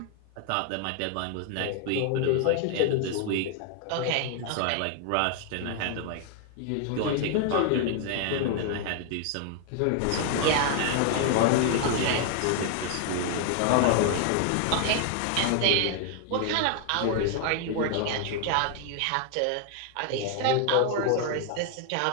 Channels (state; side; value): different; both; correlation 0.00